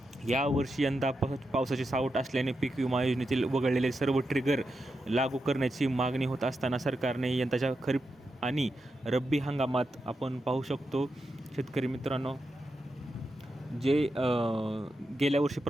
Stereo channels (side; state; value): both; normal; correlation 0.87